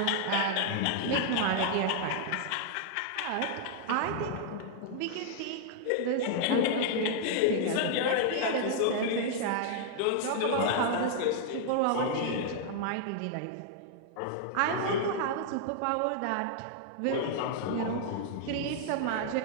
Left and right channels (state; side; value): different; both; correlation -0.01